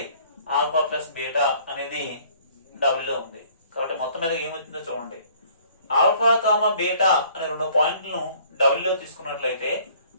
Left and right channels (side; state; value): both; inverted; correlation -0.57